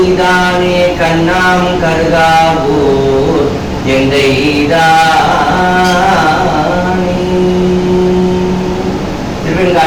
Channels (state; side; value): identical; both; correlation 1.00